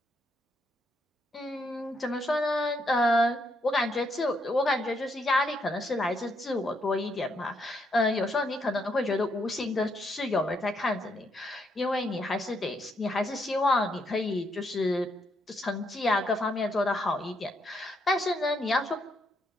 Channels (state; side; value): normal; both; correlation 0.76